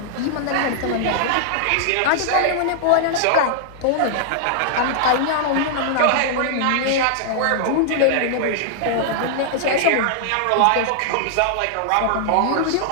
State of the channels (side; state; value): both; different; correlation -0.01